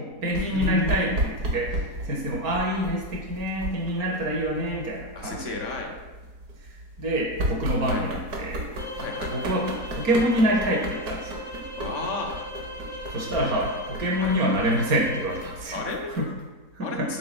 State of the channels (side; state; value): left; late; 4.4 ms